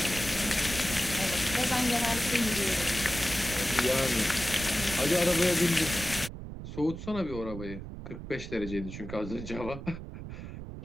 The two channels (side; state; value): right; noise; rumble, 10 dB below the sound